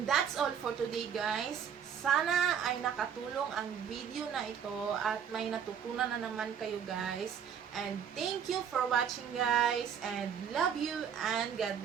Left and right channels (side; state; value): left; quieter; 8.0 dB